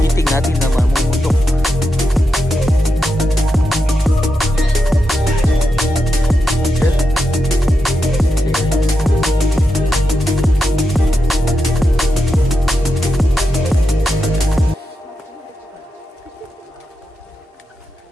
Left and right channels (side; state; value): both; normal; correlation 0.87